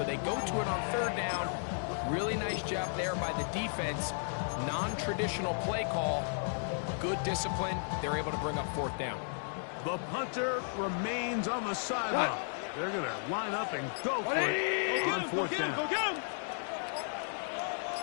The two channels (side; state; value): right; silent; digital silence